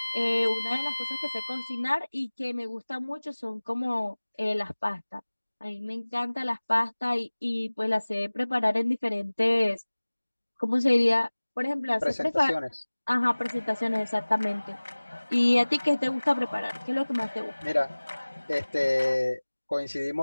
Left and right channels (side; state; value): both; inverted; correlation -1.00